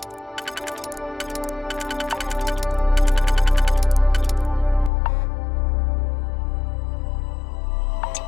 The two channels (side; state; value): right; drops out; at 4.9 s